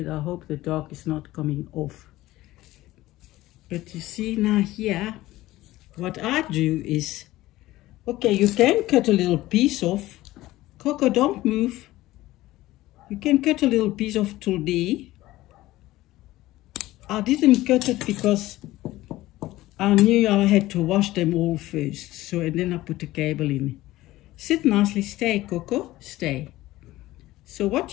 I hope the dog is not coming off. But you see now here, what I do is, okay, you can cut a little piece off. Coco, don't move. You can cut a little piece off today. I didn't cut it because I knew I had to wash them all first. So, and then I put the cable in. Sit nicely, stay, Coco, stay. So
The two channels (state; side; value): quieter; right; 16.9 dB